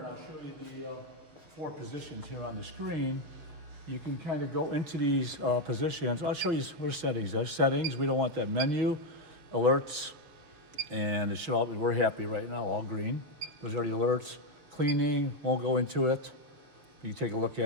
I'll show you the 4 positions here on the screen. You can kind of go into these positions. I'll show you what settings. There's settings. We don't want that menu, alerts, and it should all be, we're happy right now, all green. Those are the alerts. Cleaning, won't go into it. You take a look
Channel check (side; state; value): left; late; 6.4 ms